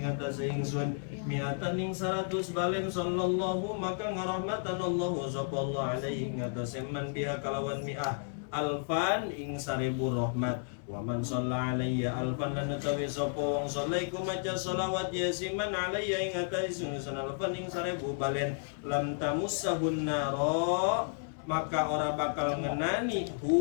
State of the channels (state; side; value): silent; right; 56 dB below the other